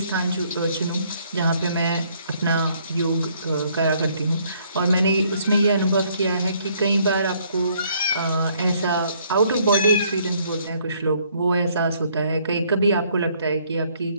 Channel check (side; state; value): both; inverted; correlation -0.66